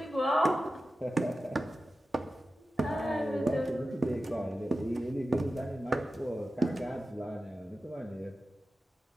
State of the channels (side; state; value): both; normal; correlation 0.93